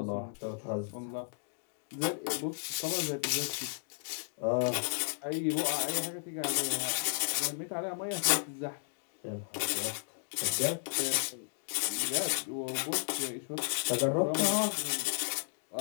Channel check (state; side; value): silent; right; digital silence